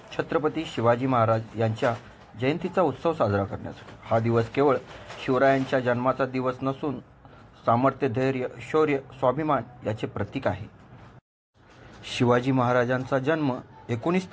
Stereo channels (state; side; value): identical; both; correlation 1.00